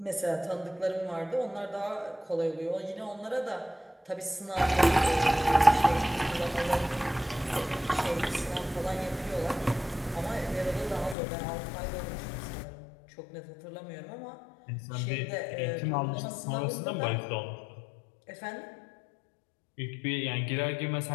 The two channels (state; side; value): drops out; right; at 11.2 s